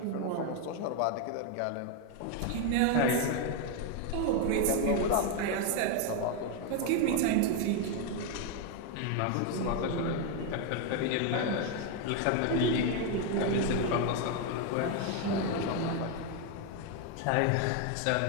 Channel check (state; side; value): different; both; correlation 0.01